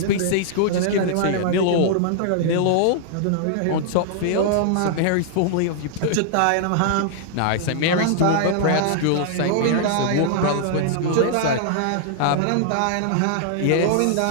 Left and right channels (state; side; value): different; both; correlation -0.01